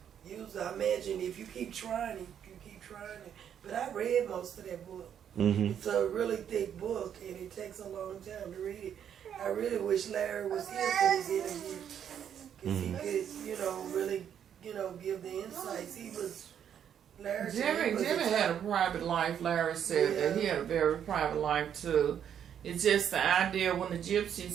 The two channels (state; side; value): quieter; left; 9.0 dB